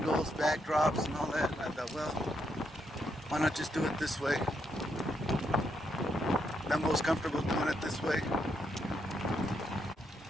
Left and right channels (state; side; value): normal; both; correlation 0.78